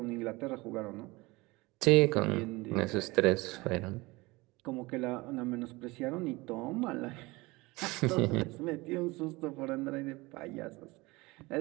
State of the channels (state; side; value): quieter; left; 22.6 dB